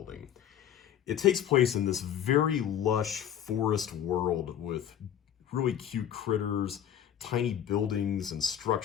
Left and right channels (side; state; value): right; quieter; 9.9 dB